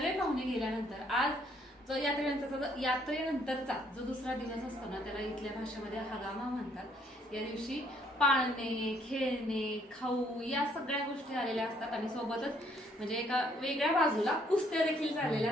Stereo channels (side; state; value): both; normal; correlation 0.66